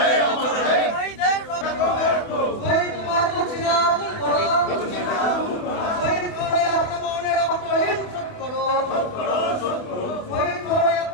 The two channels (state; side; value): late; right; 28 ms